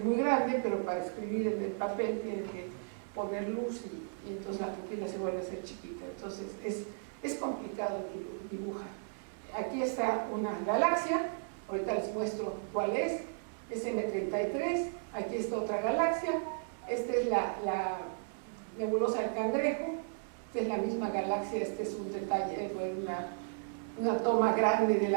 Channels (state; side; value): silent; left; digital silence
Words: muy grande, pero para escribir en el papel tiene que poner luz y entonces la pupila se vuelve a ser chiquita. Entonces es complicado dibujar. Aquí está una galaxia, ahorita les muestro cuál es M33, aquí está otra galaxia, esta es la nebulosa del Cangrejo, esta es la misma galaxia, este es un detalle, una toma grande de